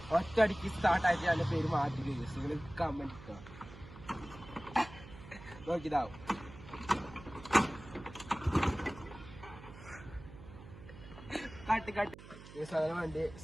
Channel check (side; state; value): right; noise; hum, 16 dB below the sound